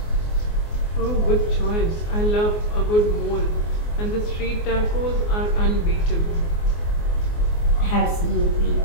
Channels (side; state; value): right; late; 24 ms